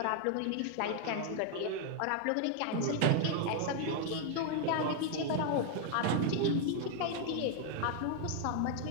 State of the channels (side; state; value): both; different; correlation 0.00